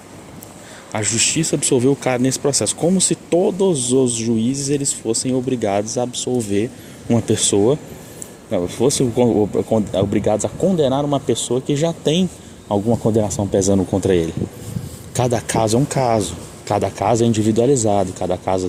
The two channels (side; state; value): both; identical; correlation 1.00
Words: A justiça absolveu o cara nesse processo, como se todos os juízes eles fossem obrigados a absolver uma pessoa, fossem obrigados a condenar uma pessoa que já tem alguma condenação pesando contra ele. cada caso é um caso, cada caso é individualizado, cada caso